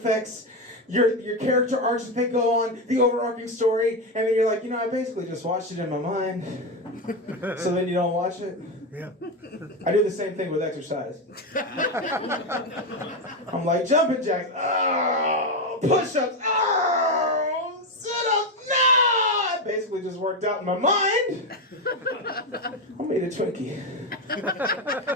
your character arcs that they go on, the overarching story. And then you're like, you know, I basically just watched it in my mind. So then you don't watch it? Yeah. I do the same thing with exercise. I'm like, jumping jacks. Oh, push-ups. Oh, sit-ups. No! I basically just worked out in my mind. I made a Twinkie.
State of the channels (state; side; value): normal; both; correlation 0.11